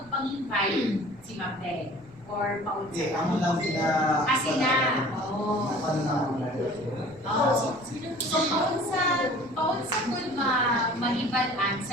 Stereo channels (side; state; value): left; noise; rumble, 24 dB below the sound